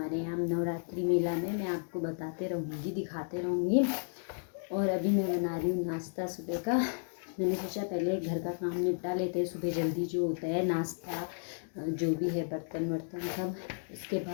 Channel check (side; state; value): right; silent; digital silence